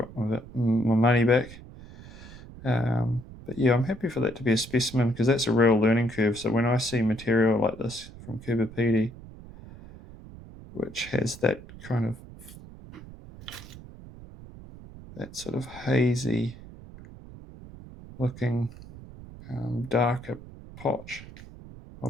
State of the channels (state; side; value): noise; right; rumble, 17 dB below the sound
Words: my money back. But yeah, I'm happy for that to be a specimen, because that's a real learning curve. So when I see material like this from Coober Pedy, which has that kind of, that sort of hazy looking darker potch, I'll